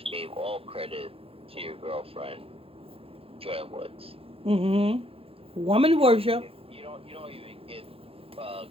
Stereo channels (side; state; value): left; late; 0.27 ms